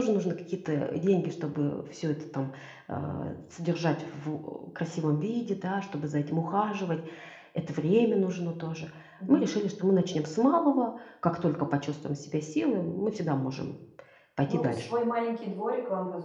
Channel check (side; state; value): both; identical; correlation 1.00